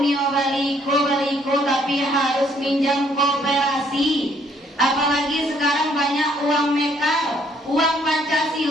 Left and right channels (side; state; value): both; normal; correlation 0.66